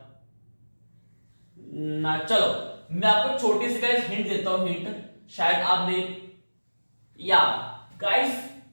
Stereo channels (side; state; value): both; inverted; correlation -1.00